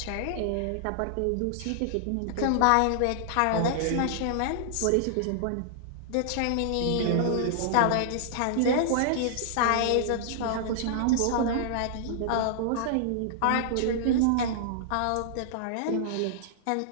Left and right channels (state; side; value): different; both; correlation -0.01